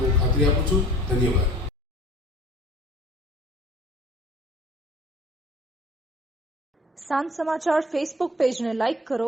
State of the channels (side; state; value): both; normal; correlation 0.48